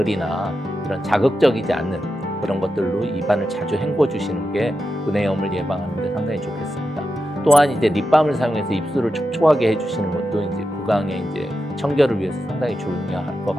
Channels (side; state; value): both; normal; correlation 0.88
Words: 이런 자극적이지 않는 그런 것들로 입안을 자주 헹궈 주시는 게 구내염을 예방하는 데 상당히 좋겠습니다. 또한 이제 립밤을 사용해서 입술을 촉촉하게 해주시는 것도 이제 구강의 이제 청결을 위해서 상당히 중요할 것